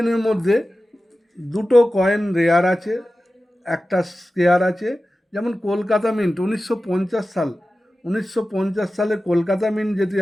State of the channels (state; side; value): normal; both; correlation 0.94